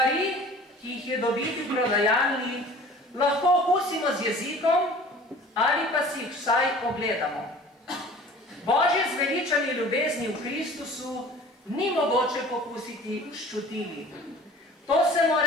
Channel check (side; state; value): both; normal; correlation 0.45